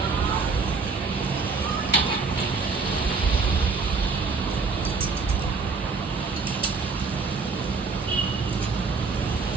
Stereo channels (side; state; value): left; quieter; 4.5 dB